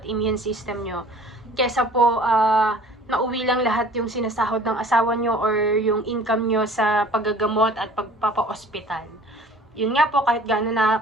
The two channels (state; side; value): normal; both; correlation 0.48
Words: immune system nyo. Kesa po nauwi lang lahat yung sinasahod ng asawa nyo or yung income nyo sa paggagamot at pagpapa-ospital. Yun nga po, kahit gaano na